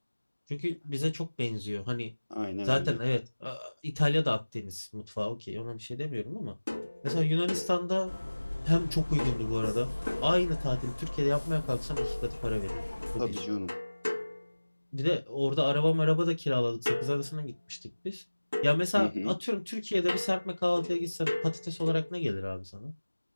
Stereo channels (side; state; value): both; inverted; correlation -1.00